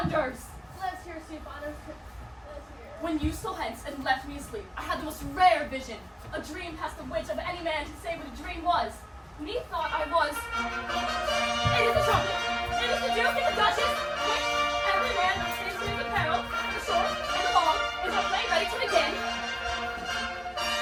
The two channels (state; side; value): identical; both; correlation 1.00